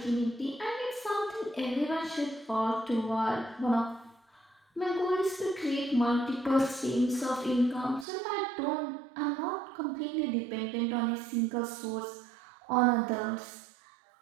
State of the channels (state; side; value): drops out; left; at 8.1 s